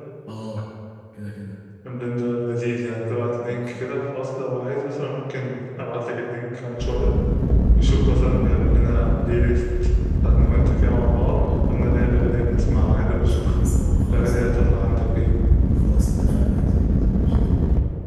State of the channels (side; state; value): both; identical; correlation 1.00